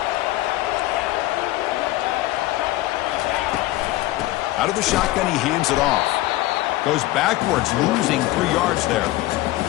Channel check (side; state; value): right; quieter; 17.3 dB